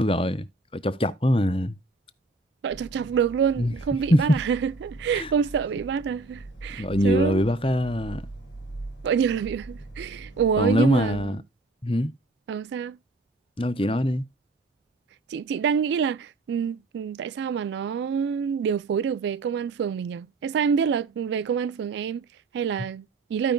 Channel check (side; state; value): left; quieter; 3.0 dB